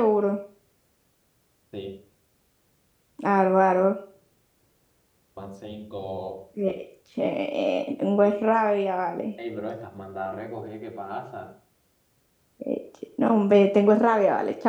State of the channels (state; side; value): identical; both; correlation 1.00